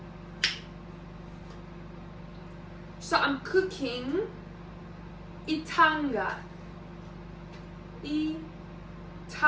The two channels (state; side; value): identical; both; correlation 1.00